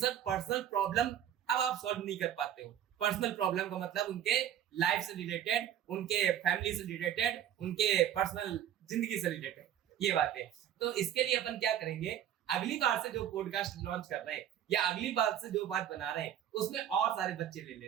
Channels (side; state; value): left; quieter; 10.5 dB